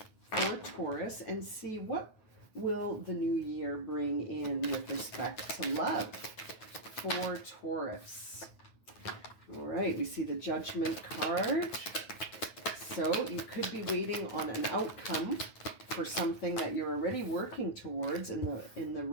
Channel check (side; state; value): right; late; 9.3 ms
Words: for Taurus and see what will the new year bring in with respect to love for Taurus. All right, we see the Judgment card. So you could be waiting on an outcome for something that you're already working towards in the